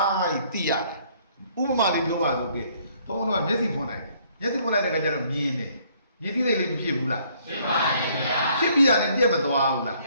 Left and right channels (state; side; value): inverted; both; correlation -0.63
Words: သိရတယ်ဥပမာလေးပြောပါလို့ကဲဘုန်းတော်ကမျက်စိဖွင့်လိုက်တယ်မျက်စိဖွင့်လိုက်တဲ့အခါကျတော့မြင်တယ်မြင်သိတဲ့လေးမဖြစ်ဘူးလားဖြစ်ပါရဲ့ဗျာဖြစ်ပြီးတာနဲ့ပြည့်မသွားဘူးလားပ